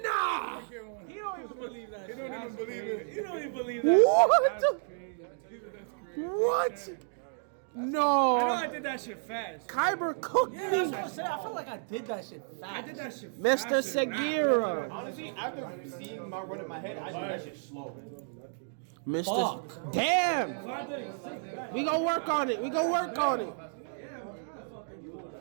Nah. He don't even believe that. He don't even believe it. He don't even believe that. What? I know No. I did that shit fast. Kyber cooked Yeah, that's me. what I'm saying. I feel like I did that shit fast. I did that shit fast. Mr. Segura. Honestly, after seeing my run in my head, I do that shit slow. Mr. Damn. We gonna work on it.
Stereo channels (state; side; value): silent; left; digital silence